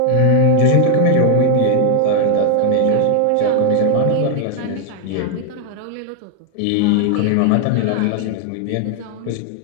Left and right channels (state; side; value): different; both; correlation 0.00